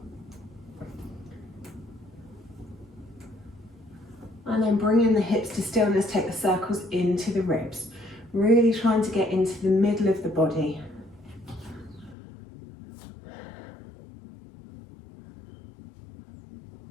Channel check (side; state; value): right; drops out; at 12.2 s